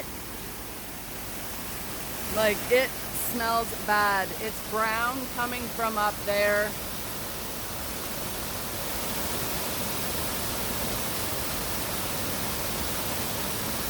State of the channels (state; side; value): noise; right; hum, 16 dB below the sound